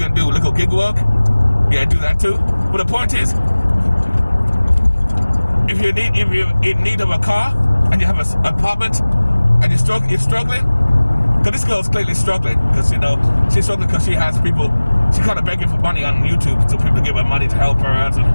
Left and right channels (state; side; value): inverted; both; correlation -1.00